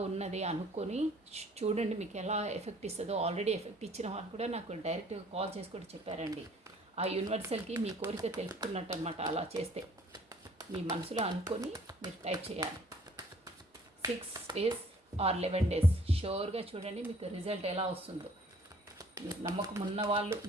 ఉన్నది అనుకొని చూడండి మీకు ఎలా ఎఫెక్ట్ ఇస్తుందో. ఆల్రెడీ ఎఫెక్ట్ ఇచ్చిన వాళ్ళు కూడా నాకు డైరెక్ట్గా కాల్ చేసి కూడా చెప్పారండి. ఆ యూనివర్సల్కి మీ కోరిక తెలుపుకున్నట్టు అనమాట. అలా చేస్తే మీ మనసులో అనుకొని మీరు టైప్ చేయాలి. 6 days or 11 days షూర్గా చూడండి మీకు రిజల్ట్ ఎలా వస్తుందో. మీరు నమ్మకం ఉన్న వాళ్ళు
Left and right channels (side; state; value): both; normal; correlation 0.57